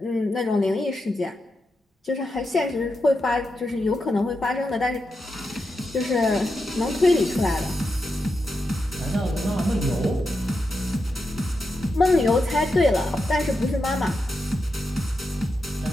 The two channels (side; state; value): both; normal; correlation 0.87